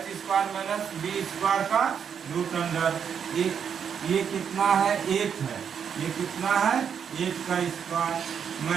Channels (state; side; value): quieter; left; 7.5 dB